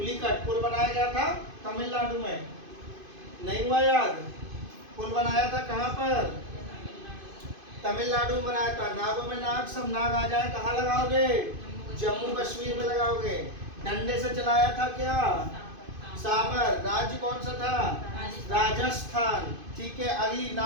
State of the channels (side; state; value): left; late; 2.5 ms